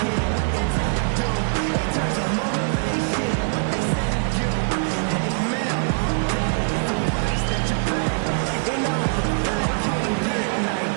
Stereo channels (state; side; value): silent; left; digital silence